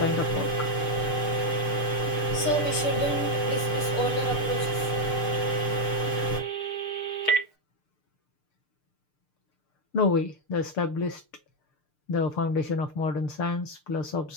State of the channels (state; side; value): late; right; 6.7 ms